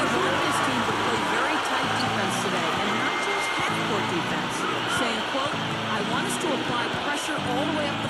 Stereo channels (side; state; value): both; identical; correlation 1.00